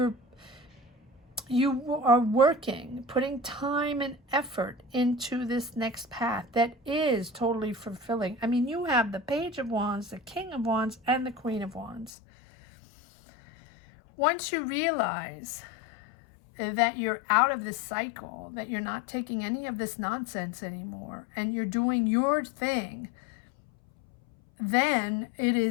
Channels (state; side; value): drops out; right; at 12.1 s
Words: are working, putting time and effort into this next path that is totally fulfilling. I mean, you have the Page of Wands, the King of Wands, and the Queen of Wands. Once you realize that you're out of this cycle, that you're not taking any of this nonsense anymore, and you're doing your thing, then it